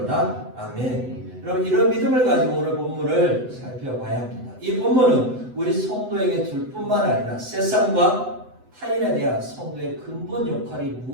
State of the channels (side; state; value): left; late; 8.0 ms